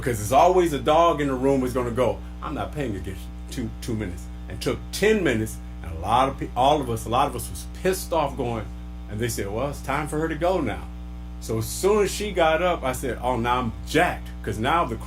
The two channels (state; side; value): identical; both; correlation 1.00